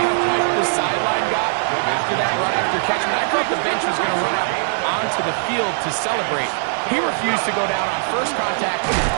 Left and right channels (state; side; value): silent; left; digital silence